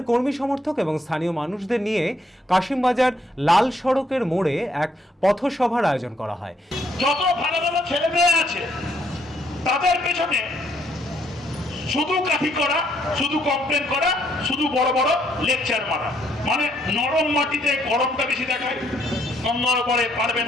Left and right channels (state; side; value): normal; both; correlation 0.70